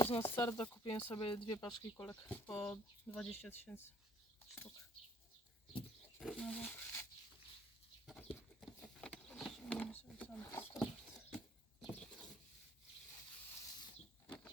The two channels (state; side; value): normal; both; correlation 0.60